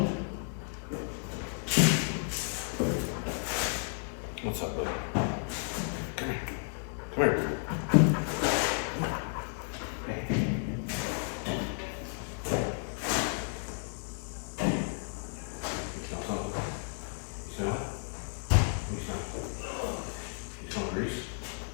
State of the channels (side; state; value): right; silent; 56 dB below the other